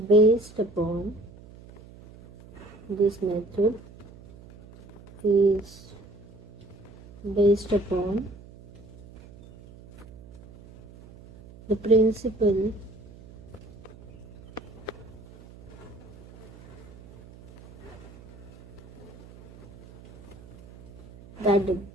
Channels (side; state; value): right; noise; hum, 20 dB below the sound